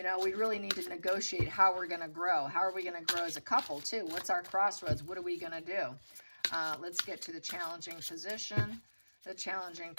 really need to negotiate how we're going to grow. How are we going to grow as a couple too? What's our crossroads? What are we going to do? Let's get to the challenging position. The challenging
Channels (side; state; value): both; inverted; correlation -1.00